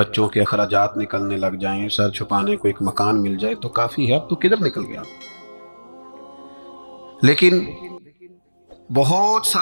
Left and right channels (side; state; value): both; inverted; correlation -1.00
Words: کے اخراجات نکلنے لگ جائیں، سر چھپانے کو ایک مکان مل جائے تو کافی ہے، اب تو کدھر نکل گیا۔ لیکن بہت